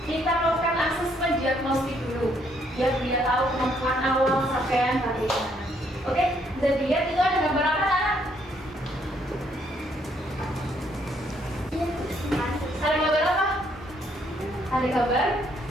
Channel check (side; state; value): both; normal; correlation 0.70